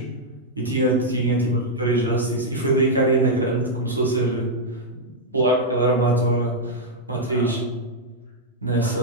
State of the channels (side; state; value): both; normal; correlation -0.04